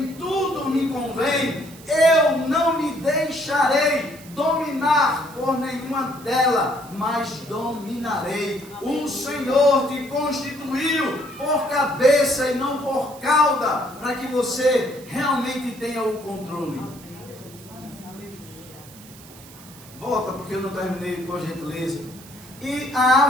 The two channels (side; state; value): right; noise; hiss, 20 dB below the sound